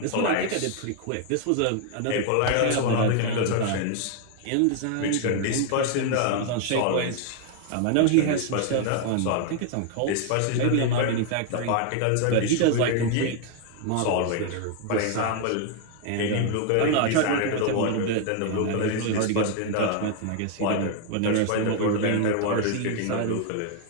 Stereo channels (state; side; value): different; both; correlation 0.00